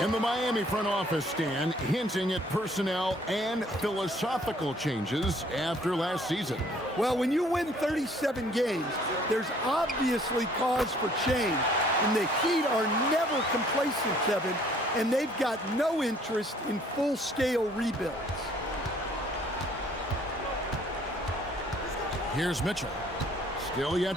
the Miami front office, Stan, hinting at personnel and philosophical changes after last season. Well, when you win 37 games, there's obviously cause for change. And the Heat are never complacent, Kevin, and they've got no interest in full-scale rebuilds. Here's Mitchell. Still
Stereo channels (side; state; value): both; normal; correlation 0.59